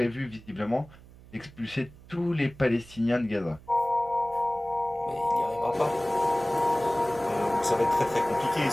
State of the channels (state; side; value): noise; right; hum, 21 dB below the sound